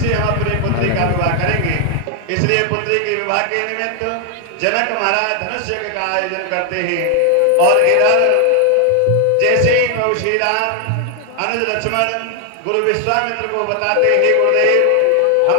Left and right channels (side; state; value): both; different; correlation 0.00